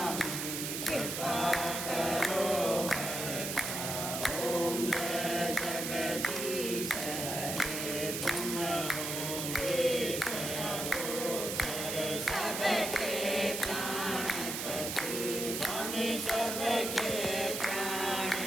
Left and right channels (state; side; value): noise; right; hiss, 3 dB below the sound